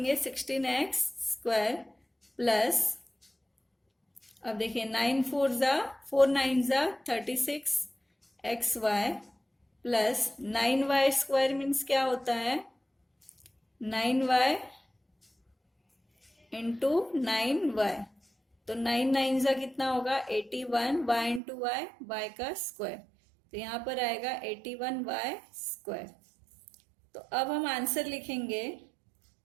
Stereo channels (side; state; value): left; drops out; at 21.4 s